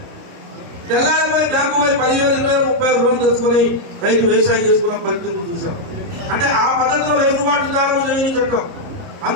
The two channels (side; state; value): left; late; 30 ms